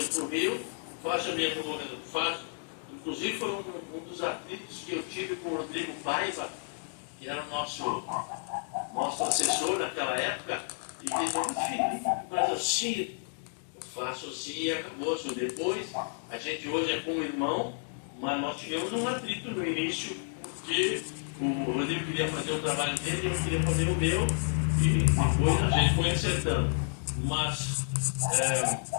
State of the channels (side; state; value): right; silent; digital silence